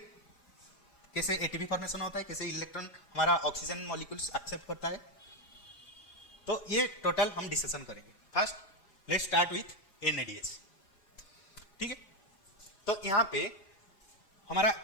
कैसे ATP फॉर्मेशन होता है, कैसे इलेक्ट्रॉन हमारा ऑक्सीजन मॉलिक्यूल्स एक्सेप्ट करता है, तो ये टोटल हम डिस्कशन करेंगे। First let's start with NADS, ठीक है। तो यहाँ पे हमारा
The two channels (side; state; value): right; late; 4.9 ms